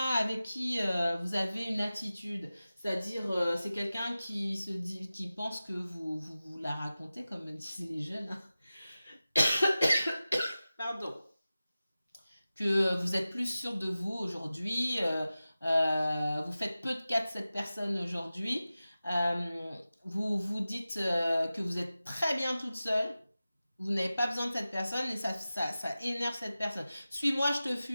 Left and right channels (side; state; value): both; inverted; correlation -0.95